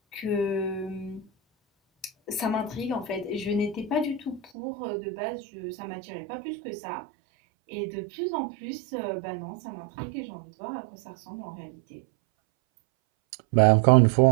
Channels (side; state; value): left; drops out; at 4.5 s